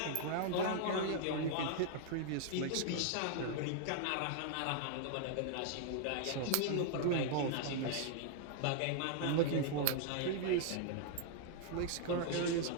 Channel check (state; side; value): different; both; correlation -0.01